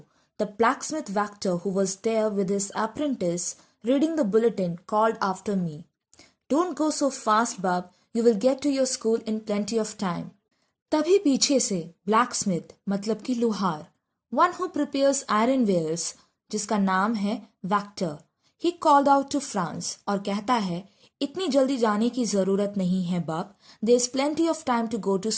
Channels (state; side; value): identical; both; correlation 1.00